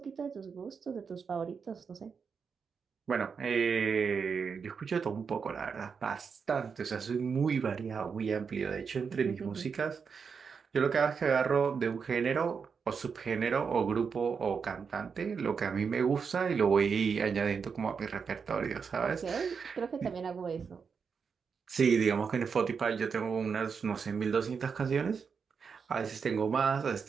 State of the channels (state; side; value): quieter; left; 5.9 dB